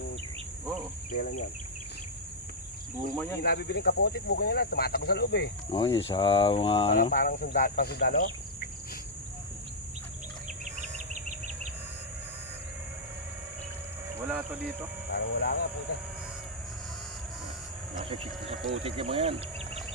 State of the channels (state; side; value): normal; both; correlation -0.05